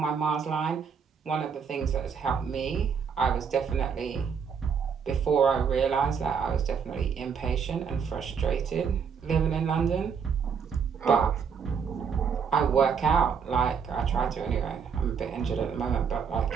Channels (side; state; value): left; quieter; 6.6 dB